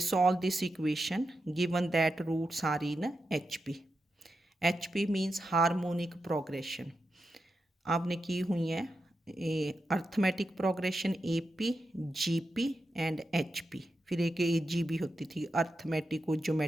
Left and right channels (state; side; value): normal; both; correlation 0.88